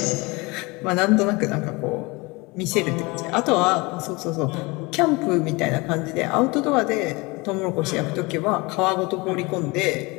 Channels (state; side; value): quieter; right; 25.1 dB